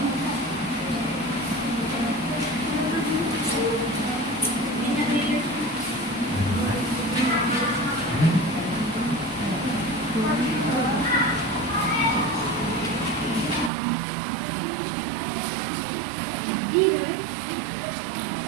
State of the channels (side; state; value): left; drops out; at 13.7 s